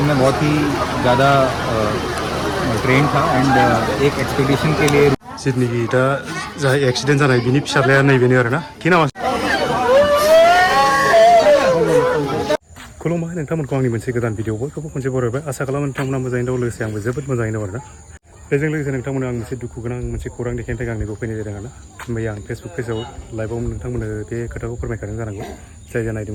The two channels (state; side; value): identical; both; correlation 1.00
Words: मैं बहुत ही ज़्यादा ट्रेन था एंड एक एक्सपेडिशन के लिए जितनिखि दा जा एक्सिडेंट जानाय बिनि फिसाज्लाया नैबेनो आरोना कि नामा खुलुमबाय नोंथांमोनखौ आंनि मोनसे गोदान भिडिअ बयखौबो खनसे बरायबाय आसा खालामो नोंथांमोना मोजाङैनो दं लोगोसे आंबो जोबोद मोजाङैनो दं आरोना बेजों लोगोसे नोंथांमोना आं मोनसे दुखु गोनां मोनसे खौरां देखायनो थाखाय आंनिखौ फैनाय जादों आरोना मैया आं फेसबुक पेजाव लाइभआव नोंथांमोननो बे खोथाखौ फोरमायखादों जानांगौ जाय